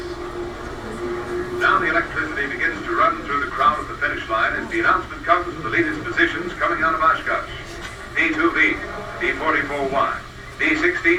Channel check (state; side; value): identical; both; correlation 1.00